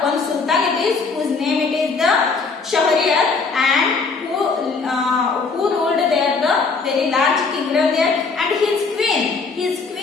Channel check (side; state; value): right; quieter; 4.5 dB